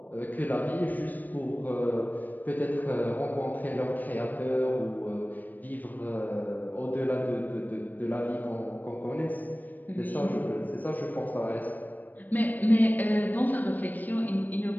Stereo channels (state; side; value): late; right; 0.087 ms